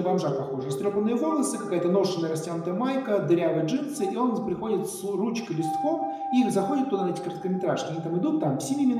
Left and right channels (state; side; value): identical; both; correlation 1.00